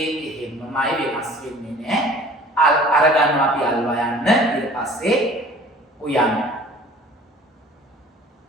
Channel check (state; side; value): normal; both; correlation 0.48